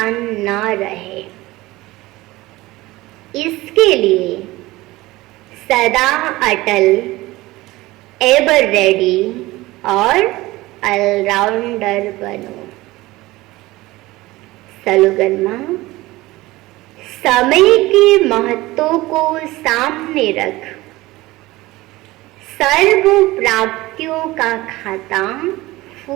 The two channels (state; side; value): quieter; left; 19.3 dB